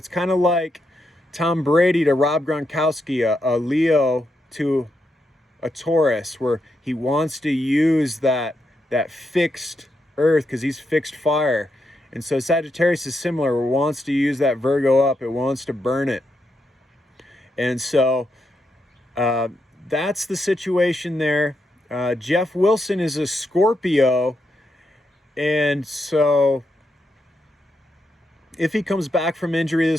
kind of like Tom Brady to Rob Gronkowski, a Leo to a Taurus, where he wants to use that fixed earth because he's fixed fire. And so Sagittarius is similar. It wants to use that Virgo up. It wants to burn it. And so that's the situation there. Jeff Wilson is a Scorpio. And so if he comes back from injury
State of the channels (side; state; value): both; normal; correlation 0.82